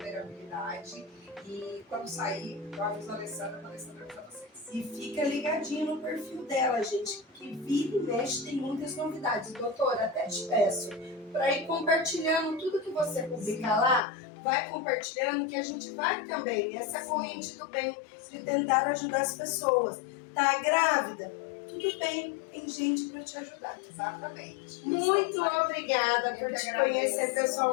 E quando sair, eu aviso a Alessandra para avisar vocês. E fica ligadinho no perfil dela, gente, que vira e mexe tem muitas novidades. Doutora, até te peço para ir compartilhando tudo que você publicar lá, vai compartilhando que a gente vai também nessa corrente do bem de tentar ajudar as pessoas. Tá grávida? Tudo bem, tem gente para te ajudar. Exatamente. Muito obrigada por te conhecer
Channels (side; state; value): right; drops out; at 14.0 s